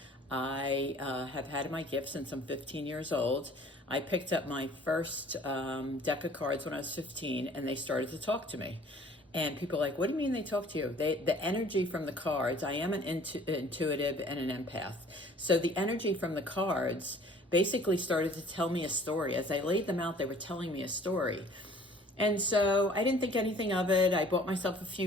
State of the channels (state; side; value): normal; both; correlation 0.52